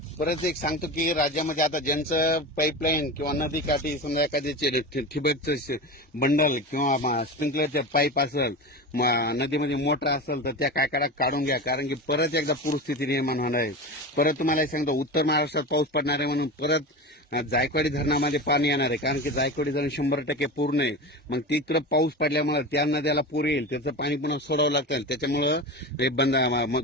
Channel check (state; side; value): normal; both; correlation 0.26